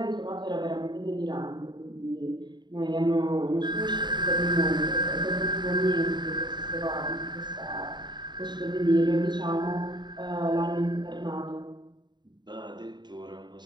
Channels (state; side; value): late; left; 0.21 ms